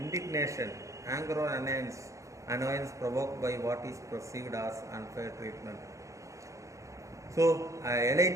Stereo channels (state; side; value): late; left; 0.15 ms